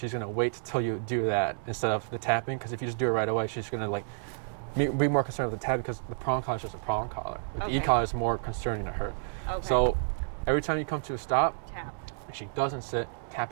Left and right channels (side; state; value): left; silent; digital silence